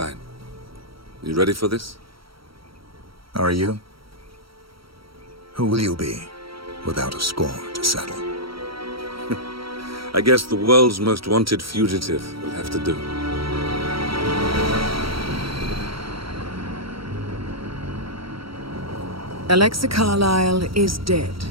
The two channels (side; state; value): left; late; 0.75 ms